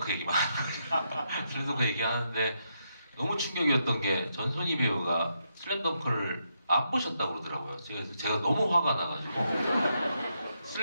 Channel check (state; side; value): inverted; both; correlation -0.80